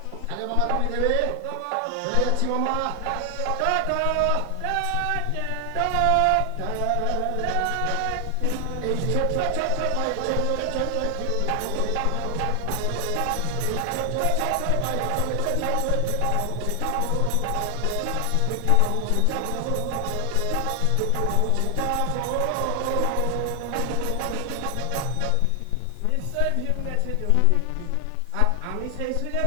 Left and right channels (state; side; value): different; both; correlation 0.00